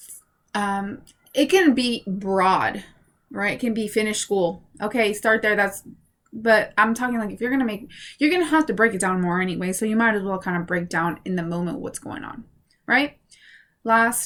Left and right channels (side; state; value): both; identical; correlation 1.00